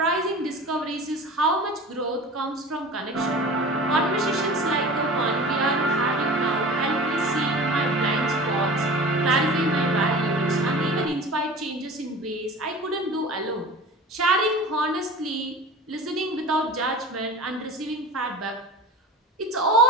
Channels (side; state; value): both; normal; correlation 0.37